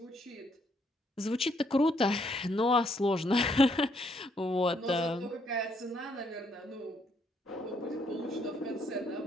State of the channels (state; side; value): normal; both; correlation 0.71